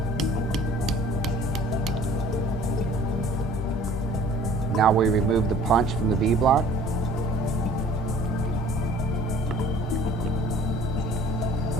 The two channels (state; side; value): normal; both; correlation 0.51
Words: Now we remove the punch from the V-block.